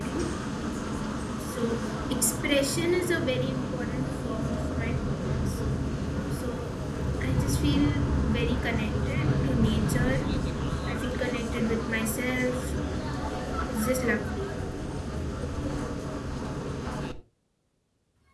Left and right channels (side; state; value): both; identical; correlation 1.00